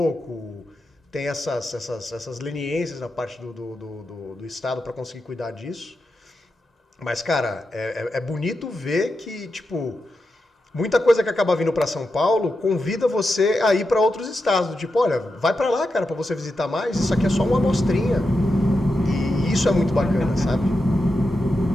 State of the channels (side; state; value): both; normal; correlation 0.88